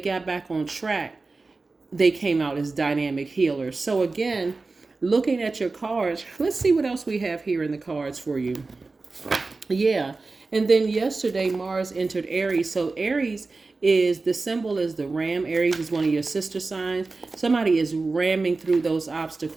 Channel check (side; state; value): left; quieter; 3.7 dB